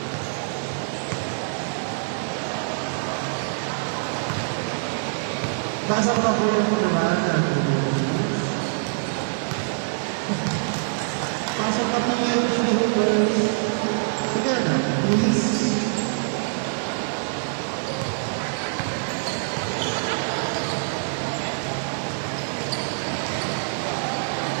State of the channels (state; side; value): silent; left; digital silence